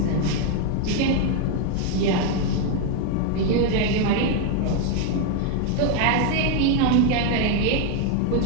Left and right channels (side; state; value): both; different; correlation 0.01